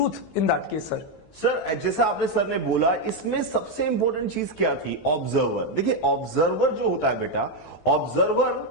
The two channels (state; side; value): late; right; 15 ms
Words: in that case sir? Sir जैसा आपने सर ने बोला, इसमें सबसे इंपॉर्टेंट चीज क्या थी, ऑब्जर्वर। देखिए ऑब्जर्वर जो होता है बेटा, ऑब्जर्वर